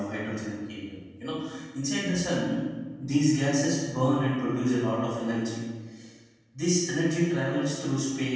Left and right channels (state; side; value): identical; both; correlation 1.00